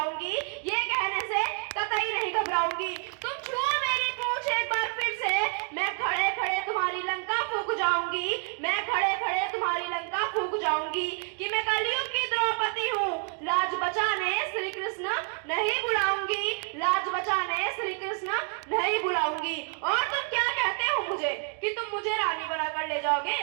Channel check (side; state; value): left; quieter; 39.2 dB